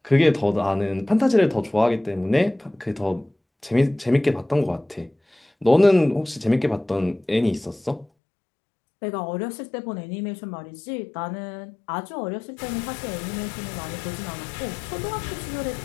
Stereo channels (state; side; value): drops out; right; at 8.1 s